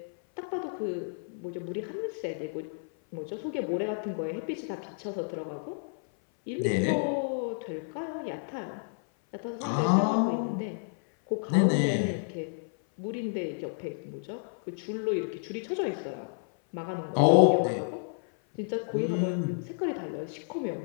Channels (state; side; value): silent; right; 56 dB below the other